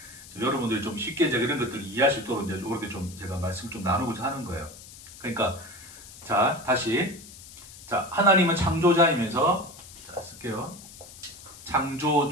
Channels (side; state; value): left; noise; hiss, 17 dB below the sound